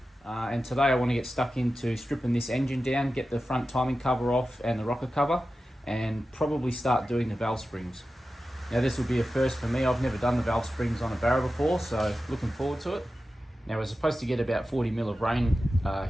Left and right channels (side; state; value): both; normal; correlation 0.93